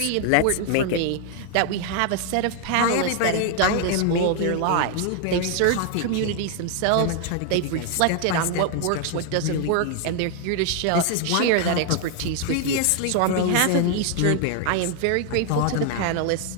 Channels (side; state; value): both; different; correlation 0.00